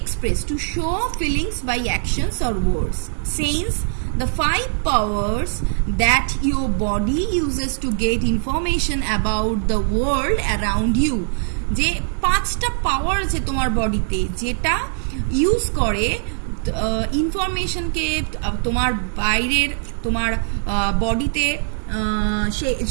to show feelings by actions or words. Sense, the 5 powers that your body uses to get information about the world around you. যে 5টা পাওয়ার আছে তোমার বডিতে যেটা use করে ইনফরমেশনকে তোমার বাইরের তোমার বডিতে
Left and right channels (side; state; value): left; silent; digital silence